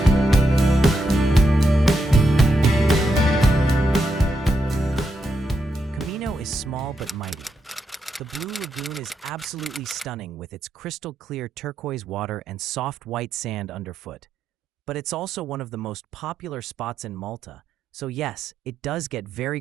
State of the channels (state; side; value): normal; both; correlation 0.82